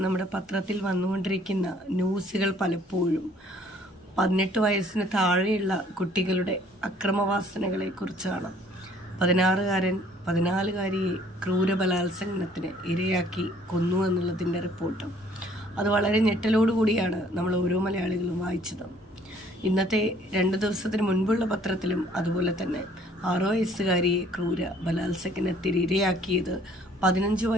നമ്മുടെ പത്രത്തിൽ വന്നുകൊണ്ടിരിക്കുന്ന ന്യൂസുകൾ പലപ്പോഴും 18 വയസ്സിന് താഴെയുള്ള കുട്ടികളുടെ അക്രമവാസനകളെ കുറിച്ചാണ്. 16-കാരൻ 14-കാരിയെ ക്രൂരബലാത്സംഗത്തിന് ഇരയാക്കി കൊന്നു എന്നുള്ളതിൻ്റെ റിപ്പോർട്ട്. അത് വളരെ ഞെട്ടലോടുകൂടിയാണ് നമ്മൾ ഓരോ മലയാളികളും വായിച്ചത്. ഇന്നത്തെ 2 ദിവസത്തിന് മുൻപുള്ള പത്രത്തിലും അതുപോലെ തന്നെ 6 വയസ്സുകാരിയെ ക്രൂര ബലാത്സംഗത്തിന് ഇരയാക്കിയത് 15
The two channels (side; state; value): both; normal; correlation 0.60